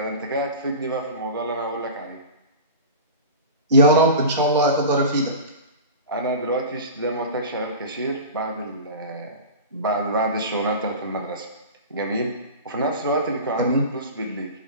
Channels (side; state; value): both; inverted; correlation -0.32